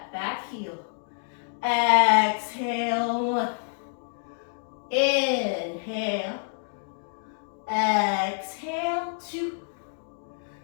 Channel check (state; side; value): silent; right; digital silence